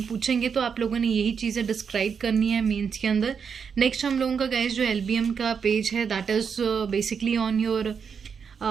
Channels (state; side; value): quieter; left; 6.5 dB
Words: पूछेंगे तो आप लोगों ने यही चीज़ें डिस्क्राइब करनी है मेंस के अंदर। नेक्स्ट हम लोगों का गाइस जो एलबीएम का पेज है that is basically on your